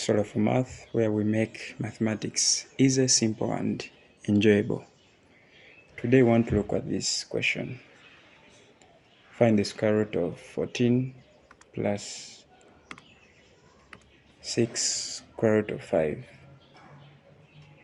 Solar for Math, where we make mathematics easy, simple, and enjoyable. Today, we want to look at this question. Find the square root of 14 plus 6 square root of 5.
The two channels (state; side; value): identical; both; correlation 1.00